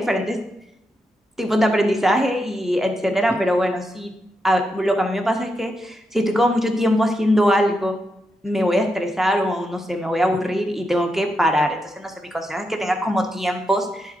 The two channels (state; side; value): normal; both; correlation 0.84